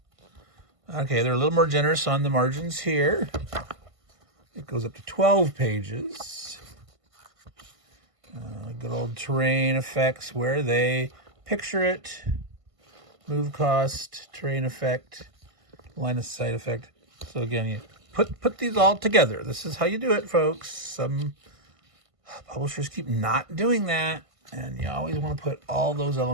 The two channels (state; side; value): late; left; 1.5 ms